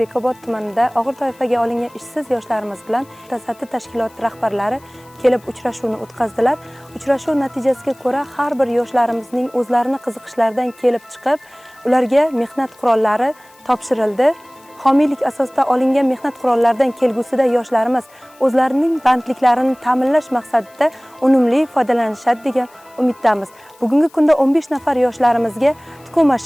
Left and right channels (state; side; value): noise; left; hiss, 28 dB below the sound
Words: tumanida og'ir toifaga olingan ishsiz yoshlarimiz bilan mutasaddi tashkilot rahbarlari kelib uchrashuvni o'tkazdilar. Uchrashuv natijasiga ko'ra har bir yoshlarimizning o'zlarini qiziqishlaridan kelib chiqib, ularga mehnat qurollari topshirildi. Homiylik asosida olingan mehnat qurollaridan kelgusida yoshlarimiz o'zlarining bandliklarini ta'minlash maqsadida unumli foydalanishadi degan umiddamiz. Bugungi kunda 15 nafar yoshlarimizga tikuv